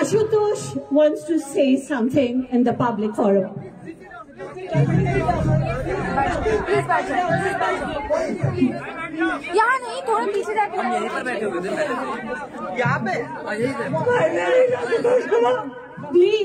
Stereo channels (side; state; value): both; identical; correlation 1.00